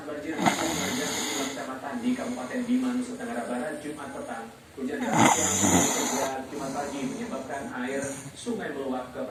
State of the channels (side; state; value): both; identical; correlation 1.00